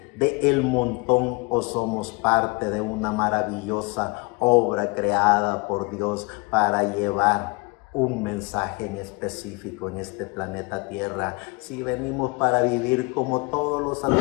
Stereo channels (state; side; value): quieter; right; 28.3 dB